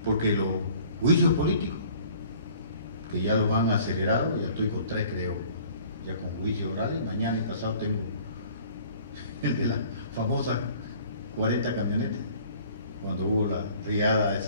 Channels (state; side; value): inverted; both; correlation -0.52